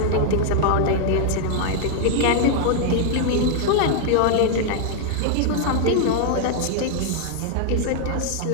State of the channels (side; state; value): both; different; correlation 0.00